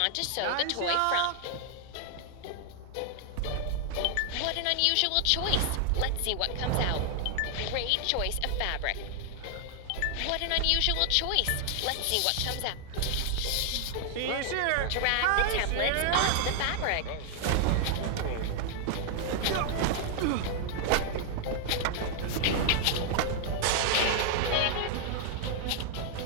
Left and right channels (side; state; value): both; different; correlation 0.00